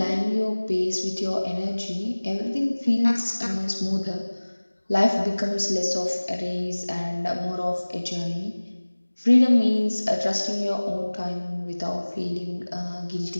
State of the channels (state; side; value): inverted; both; correlation -1.00